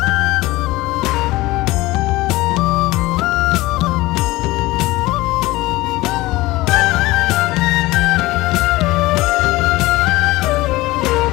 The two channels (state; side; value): quieter; right; 19.4 dB